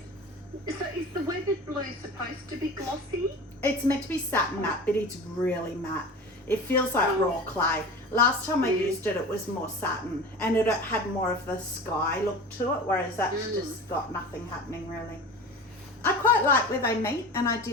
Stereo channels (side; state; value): both; normal; correlation 0.35